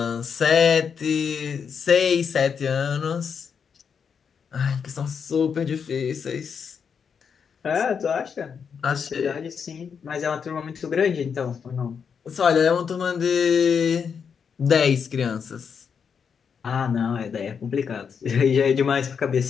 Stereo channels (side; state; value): right; quieter; 6.6 dB